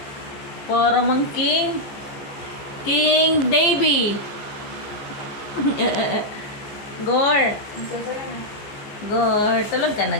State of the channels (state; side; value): late; right; 14 ms